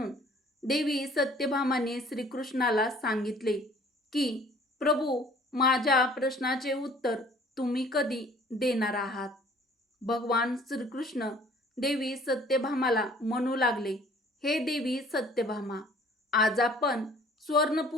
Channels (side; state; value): both; normal; correlation 0.54